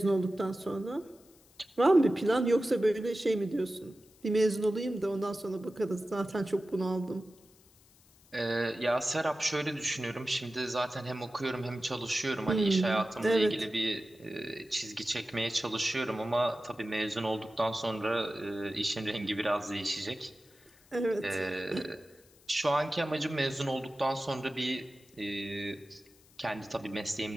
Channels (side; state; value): left; noise; hiss, 28 dB below the sound